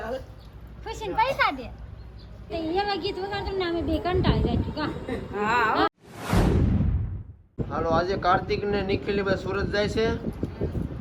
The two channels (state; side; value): identical; both; correlation 1.00